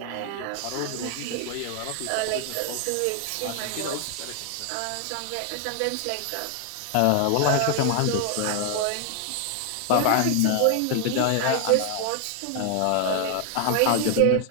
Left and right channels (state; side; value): different; both; correlation 0.00